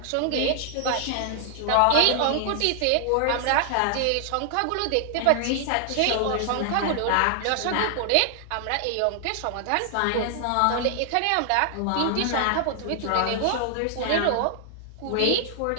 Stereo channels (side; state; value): both; different; correlation 0.00